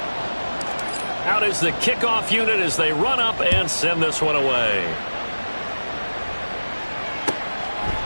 Out is the kickoff unit as they run up and send this one away.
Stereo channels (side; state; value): both; inverted; correlation -1.00